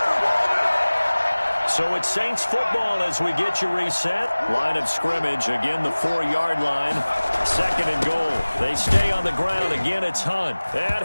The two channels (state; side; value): inverted; both; correlation -1.00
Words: So it's Saints football as we get you reset. Line of scrimmage, again the 4-yard line. 2nd and goal. They stay on the ground. Again, it's Hunt. And